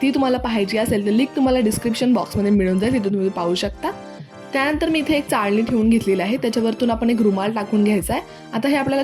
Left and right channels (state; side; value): identical; both; correlation 1.00